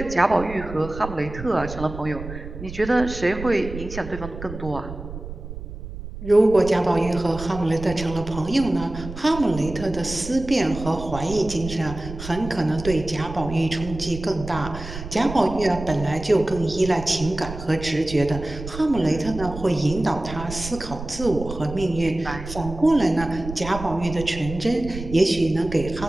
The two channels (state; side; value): noise; right; rumble, 11 dB below the sound